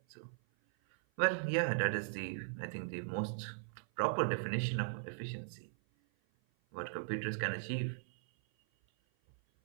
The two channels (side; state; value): left; silent; 52 dB below the other